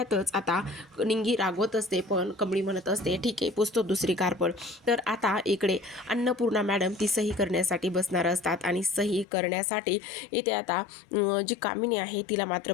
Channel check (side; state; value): right; drops out; at 9.2 s